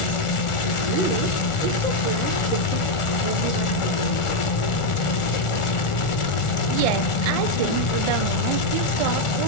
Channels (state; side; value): late; right; 1.4 ms